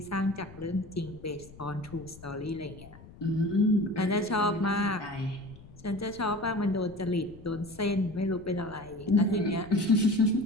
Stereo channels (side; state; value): left; noise; rumble, 20 dB below the sound